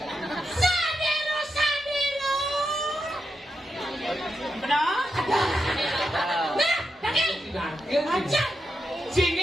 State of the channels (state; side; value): normal; both; correlation 0.86